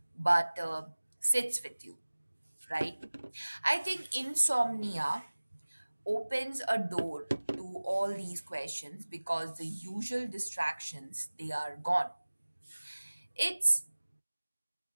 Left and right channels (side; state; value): both; inverted; correlation -1.00